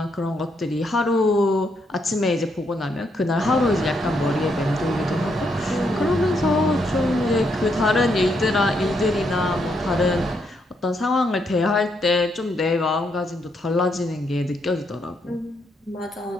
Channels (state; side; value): normal; both; correlation 0.77